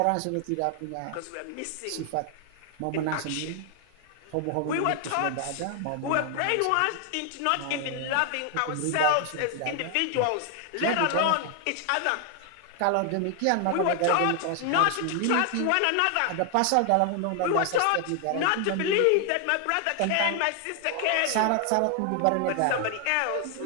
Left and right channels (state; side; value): different; both; correlation 0.00